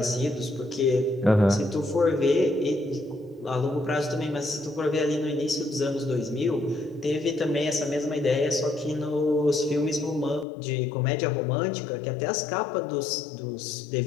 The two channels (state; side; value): drops out; right; at 10.5 s